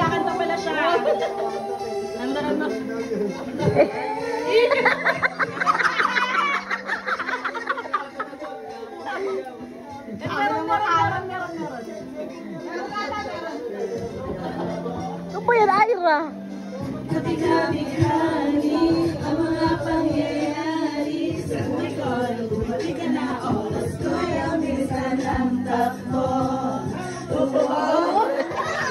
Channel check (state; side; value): identical; both; correlation 1.00